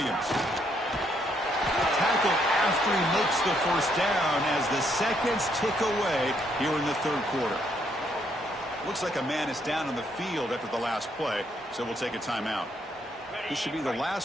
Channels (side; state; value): both; normal; correlation 0.72